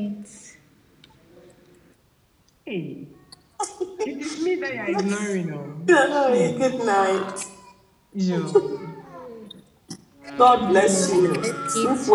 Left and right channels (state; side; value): identical; both; correlation 1.00